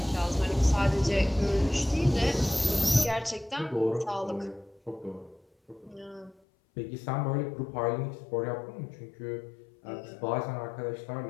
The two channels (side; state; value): right; drops out; at 6.4 s